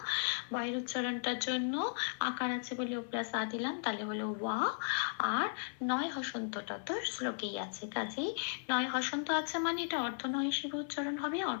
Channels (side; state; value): right; silent; 54 dB below the other